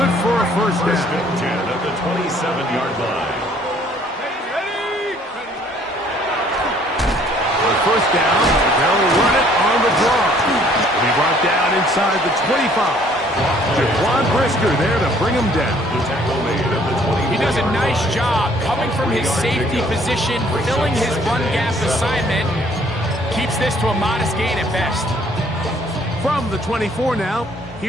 for a first First down. and 10 at the 27-yard line. On first down, they'll run it on the draw. He'll be brought down inside the 25. Jaquan Brisker there to bring him down. The tackle made at the 20. He does a nice job coming from his safety position, filling his run gap assignment. Keeps this to a modest gain at best. From the 24 now,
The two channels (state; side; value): normal; both; correlation 0.60